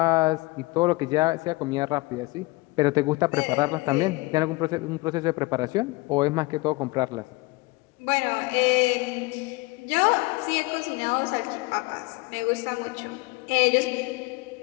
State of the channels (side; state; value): right; quieter; 23.3 dB